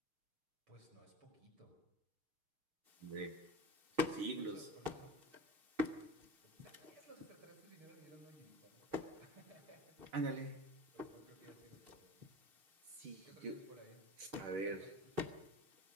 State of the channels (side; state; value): left; late; 6.4 ms